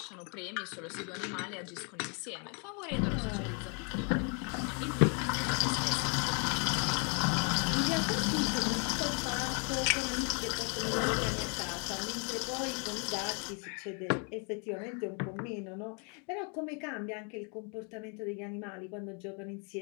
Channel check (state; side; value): quieter; right; 36.9 dB